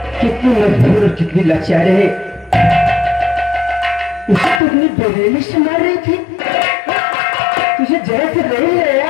कितनी मजबूर और कितनी लाचार है। उसे तो अपनी बेरहमी से मार रही थी, तुझे जरा से नहीं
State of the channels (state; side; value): drops out; right; at 4.6 s